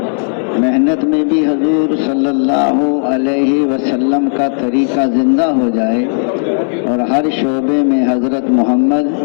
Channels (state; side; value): silent; right; digital silence